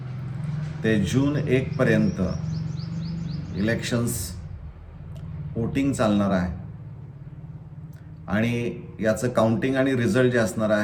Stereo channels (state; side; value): identical; both; correlation 1.00